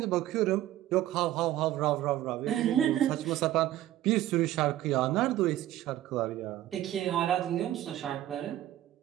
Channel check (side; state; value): left; quieter; 13.8 dB